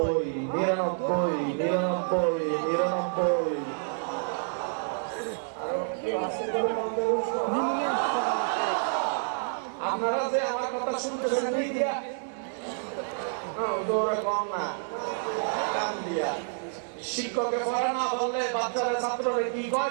99 99 99। আপনারা যে আমার কথা শুনতেছেন দিয়া কম না, কান দিয়া। শিক্ষকে পড়া না বললে বাচ্চারা ছাত্ররা কি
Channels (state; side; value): silent; left; digital silence